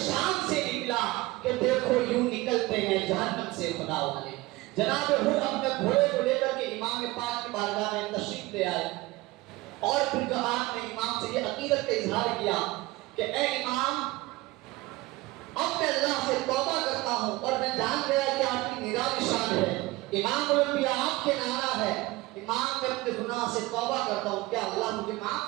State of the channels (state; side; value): quieter; left; 20.1 dB